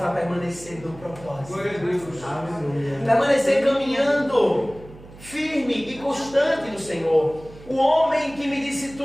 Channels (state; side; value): noise; right; hum, 19 dB below the sound